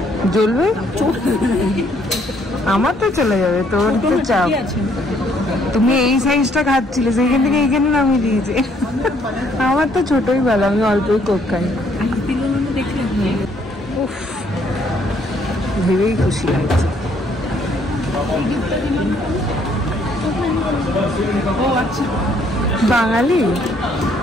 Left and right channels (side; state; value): both; normal; correlation 0.67